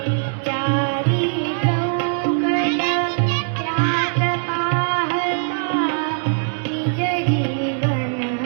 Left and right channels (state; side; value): silent; left; digital silence